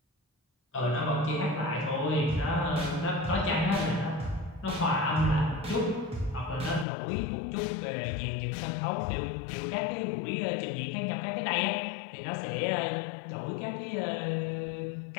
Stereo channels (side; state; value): right; drops out; at 6.9 s